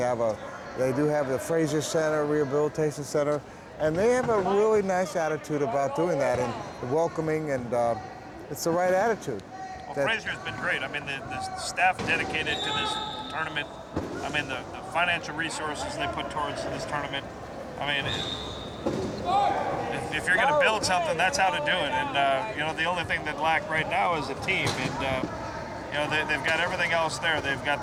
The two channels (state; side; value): identical; both; correlation 1.00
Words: do have the Fraser Center, Rehabilitation Center, and they have a really nice attitude about doing that and welcoming, and it's the right attitude. Well, Fraser's been great. I mean, the staff dedicated to this tournament. I mean, the financial resources they put towards this tournament. I mean, if you're going to build something, that's how to do it. And the only thing that lack right now is a team. And they've got everything else there. They've got